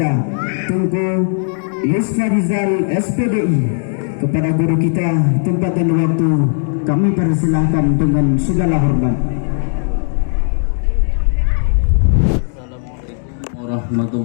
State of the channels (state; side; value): silent; right; 62 dB below the other